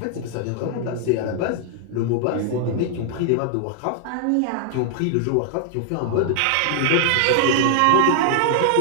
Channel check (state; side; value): different; both; correlation -0.01